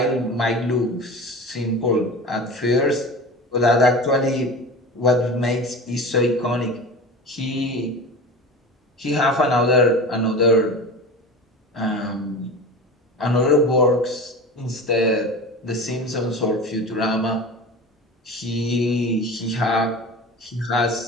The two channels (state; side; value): normal; both; correlation 0.32